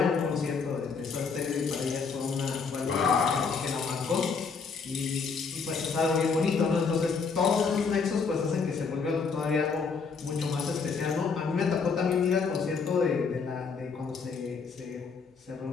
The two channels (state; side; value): quieter; right; 5.2 dB